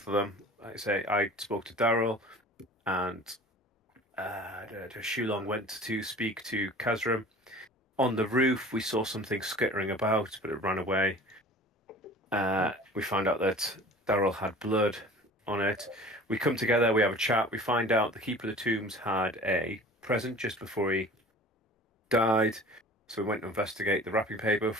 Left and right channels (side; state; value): both; normal; correlation 0.43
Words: of them. Like I say, I spoke to Daryl, and Shulong went to speak to Kazram. On the roof, we saw something skittering about, but it ran away. We found out that Daryl had blood on it. We come together, we have a chat. We find out the Keeper of the Tombs had a present just before he died. So we went to investigate the wrapping paper,